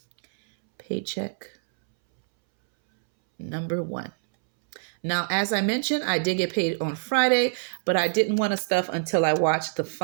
Paycheck number 1. Now, as I mentioned, I did get paid on Friday, but I didn't want to stuff until I watched the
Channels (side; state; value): left; silent; 62 dB below the other